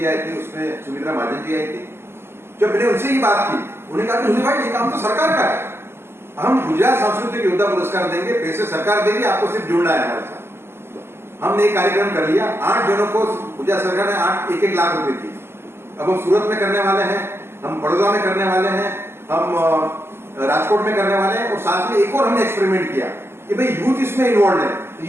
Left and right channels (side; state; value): left; late; 0.12 ms